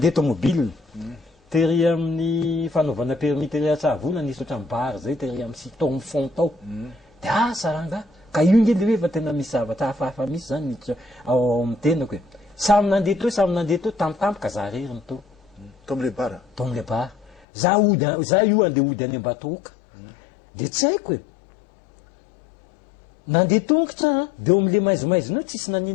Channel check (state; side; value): drops out; right; at 17.4 s